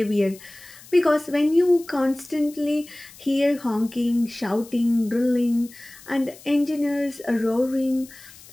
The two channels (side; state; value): left; noise; hiss, 21 dB below the sound